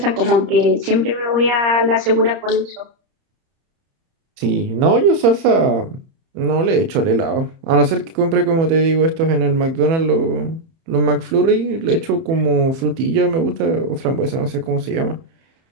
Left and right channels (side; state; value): left; late; 31 ms